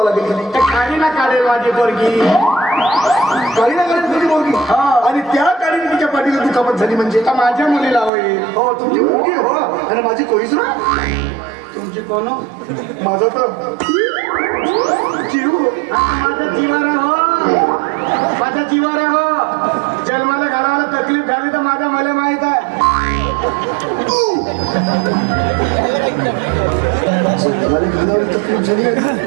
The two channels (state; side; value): drops out; left; at 8.1 s